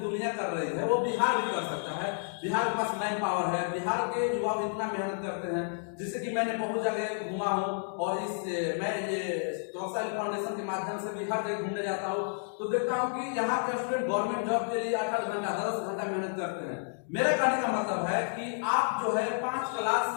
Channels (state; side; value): silent; right; digital silence